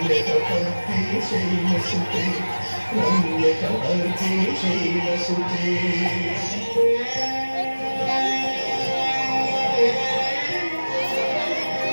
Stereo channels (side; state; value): both; inverted; correlation -1.00